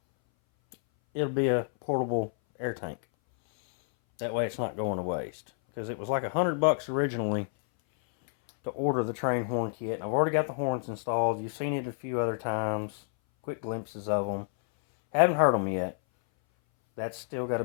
it'll be a portable air tank. That way it's not going to waste, because it was like $100 originally to order the train horn kit. I've already got the horns installed. You've seen it a few other times, quick glimpses of them. Haven't heard them yet. That's still got to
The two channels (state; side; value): silent; right; 58 dB below the other